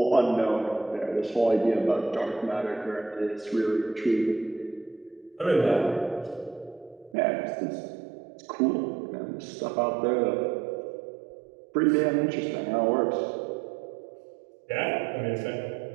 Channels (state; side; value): drops out; left; at 7.2 s